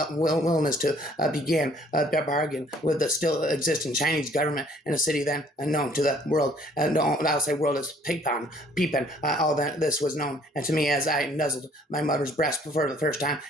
to begin a bargain with the still existing Chinese government in a city then unknown to the world. I'll say world is peeping. All that this was known, and to me as I nuzzled my mother's breast for the first time,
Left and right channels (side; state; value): both; normal; correlation 0.59